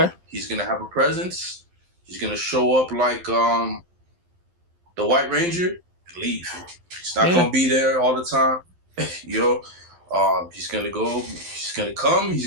He's gonna have a presence. He's gonna show up like the White Ranger and leave. He's not gonna be there all the time. He's gonna go. He's gonna come. He's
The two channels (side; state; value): left; late; 12 ms